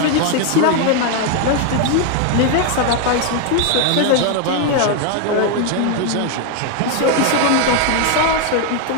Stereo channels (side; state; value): both; different; correlation 0.01